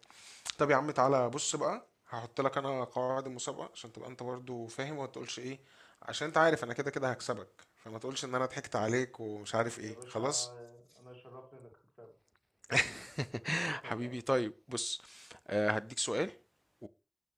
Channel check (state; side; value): identical; both; correlation 1.00